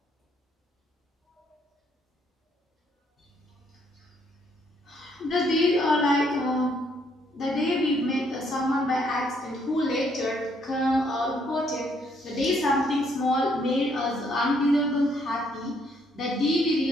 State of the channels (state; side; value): normal; both; correlation 0.70